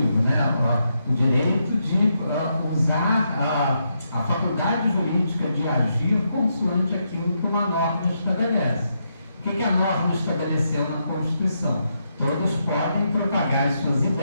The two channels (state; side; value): inverted; both; correlation -0.81